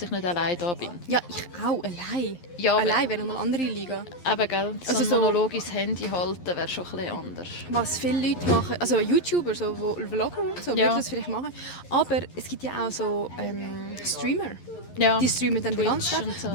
ich nicht allein da bin. Ja, ich auch, allein. Ja, allein wäre nochmal eine andere Liga. Eben, gell? So Also ein so- Monolog ins Handy halten wäre schon ein bisschen anders. Was viele Leute machen, also YouTuber, so, wo Vlogger und so, Ja. würden das vielleicht machen. Aber es gibt ja auch so Streamer. Ja. Die streamen dann den Twitch ganzen Tag. und so,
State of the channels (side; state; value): right; late; 11 ms